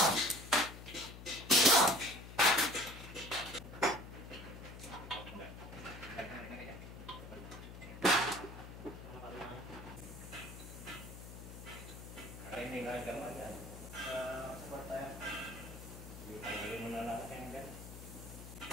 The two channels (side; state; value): left; noise; hum, 12 dB below the sound